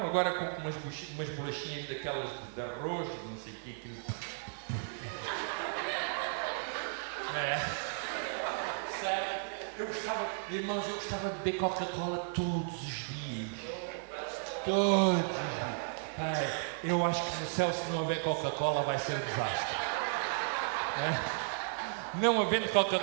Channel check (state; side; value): silent; left; digital silence